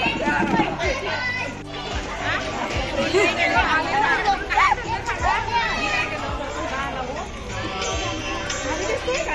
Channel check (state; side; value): identical; both; correlation 1.00